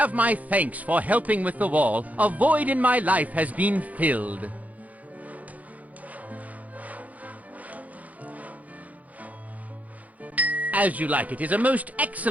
my thanks for helping with the wall. A void in my life has been filled. As You Like It is a most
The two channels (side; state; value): left; late; 0.075 ms